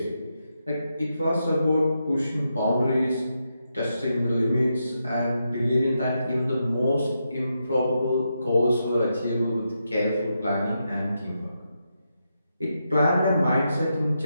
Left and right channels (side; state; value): both; inverted; correlation -0.84